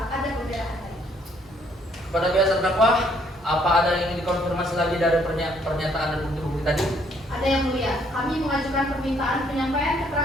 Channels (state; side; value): normal; both; correlation 0.66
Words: ada pembelaan lain. Kepada pihak terdakwa, apa ada yang ingin dikonfirmasi lagi dari pernyataan dan bukti-bukti tadi? Ada yang mulia, kami mengajukan permintaan penyampaian